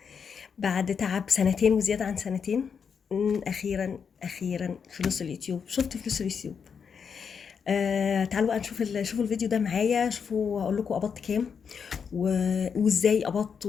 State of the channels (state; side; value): quieter; right; 6.5 dB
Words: بعد تعب سنتين وزياده عن سنتين. اخيرا فلوس اليوتيوب، شفت فلوس اليوتيوب. تعالوا بقى نشوف شوفوا الفيديو ده معايا، شوفوا اقول لكم قبضت كام وازاي قبضت